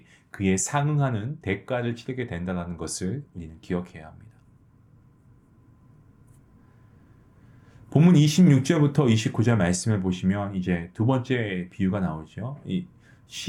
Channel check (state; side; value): identical; both; correlation 1.00